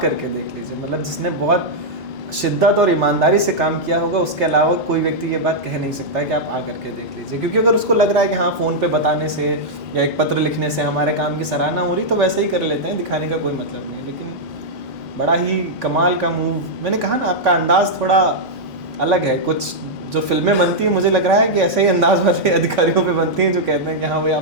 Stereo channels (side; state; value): both; normal; correlation -0.06